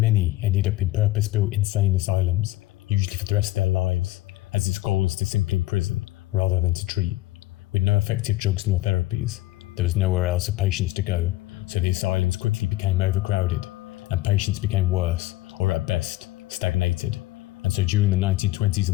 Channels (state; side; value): quieter; right; 17.5 dB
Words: ended up in purpose-built insane asylums, usually for the rest of their lives, as its goal was to simply imprison rather than to treat. With no effective drugs nor therapies, there was nowhere else for patients to go, so the asylums quickly became overcrowded, and patients became worse, or at best, stagnated. And so during the 1920s